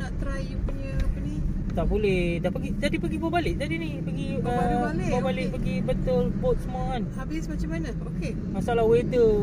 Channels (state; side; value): identical; both; correlation 1.00